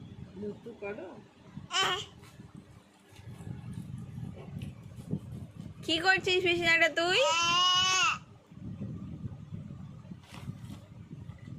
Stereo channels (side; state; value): both; identical; correlation 1.00